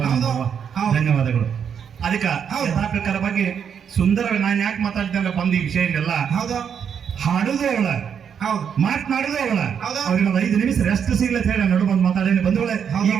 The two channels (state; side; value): quieter; left; 7.6 dB